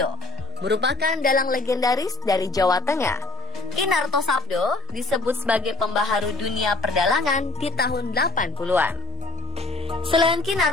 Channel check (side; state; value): right; quieter; 3.1 dB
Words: merupakan dalang legendaris dari Jawa Tengah. Ki Narto Sabdo disebut sebagai pembaharu dunia perdalangan di tahun 80-an. Selain Ki